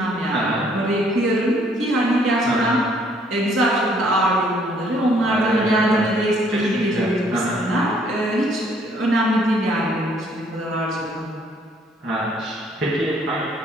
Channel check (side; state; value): both; normal; correlation 0.64